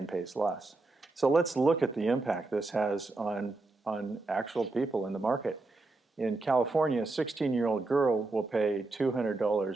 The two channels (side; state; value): left; quieter; 3.3 dB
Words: pays less. So let's look at the impact this has on actual people in the market. In California, a 16-year-old girl will pay